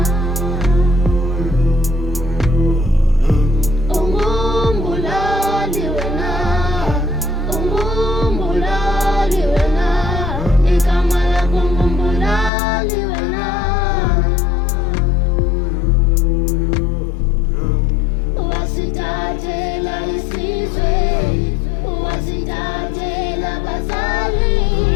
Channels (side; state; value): right; drops out; at 12.5 s